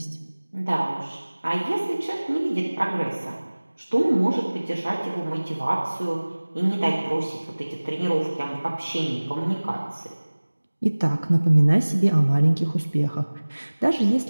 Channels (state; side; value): inverted; both; correlation -1.00